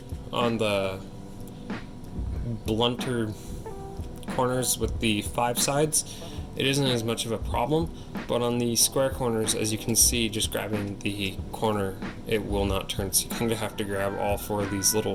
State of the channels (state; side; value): identical; both; correlation 1.00